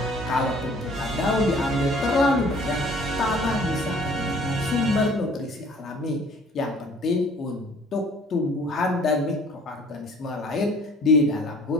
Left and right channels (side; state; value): both; normal; correlation 0.53